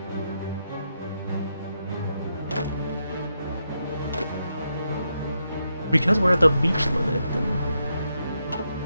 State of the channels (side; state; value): both; inverted; correlation -0.82